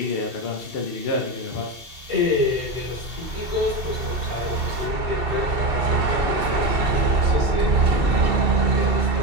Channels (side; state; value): left; late; 2.7 ms